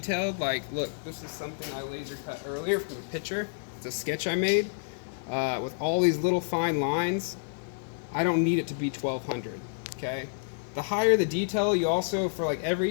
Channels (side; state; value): right; silent; 55 dB below the other